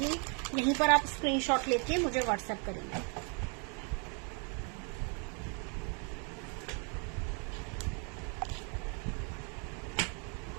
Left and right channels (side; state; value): left; quieter; 36.6 dB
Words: यहीं पर आप स्क्रीनशॉट लेके मुझे व्हाट्सएप करेंगे।